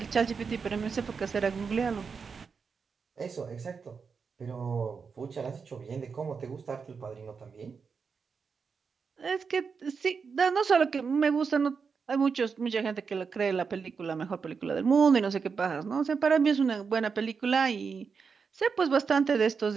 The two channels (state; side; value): quieter; left; 5.6 dB